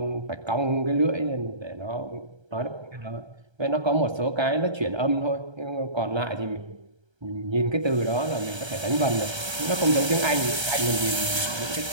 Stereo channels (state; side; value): late; left; 1.3 ms